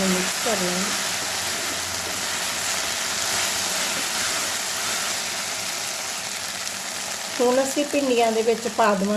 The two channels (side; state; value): both; identical; correlation 1.00